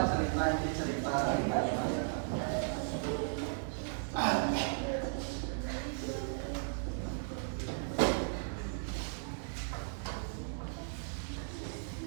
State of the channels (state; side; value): silent; left; digital silence